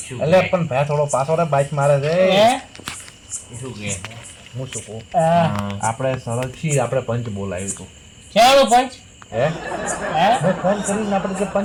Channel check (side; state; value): both; identical; correlation 1.00